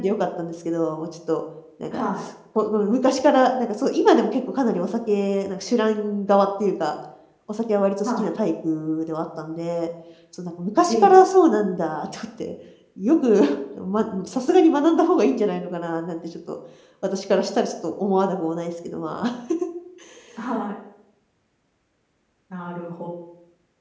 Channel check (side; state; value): both; identical; correlation 1.00